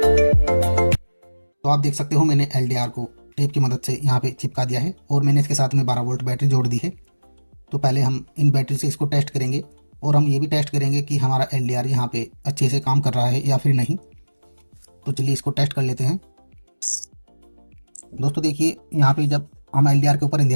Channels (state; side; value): inverted; both; correlation -1.00